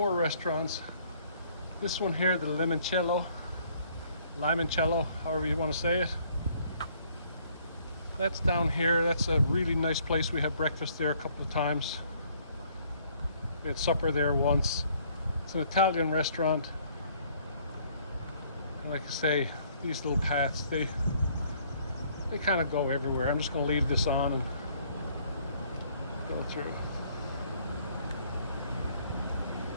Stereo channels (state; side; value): inverted; both; correlation -0.63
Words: restaurants. This one here, the Limoncello, however you want to say it. That's down here. That's a really nice place. We had breakfast there a couple of times. We had supper there once. It's an Italian restaurant. And like I say, these little paths, they kind of go everywhere. I'm just going to leave this on and go through.